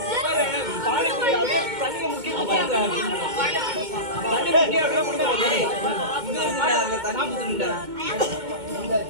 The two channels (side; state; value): left; late; 2.2 ms